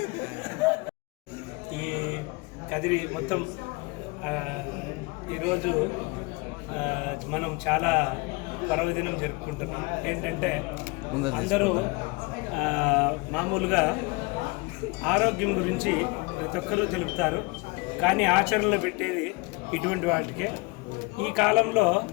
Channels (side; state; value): right; quieter; 26.5 dB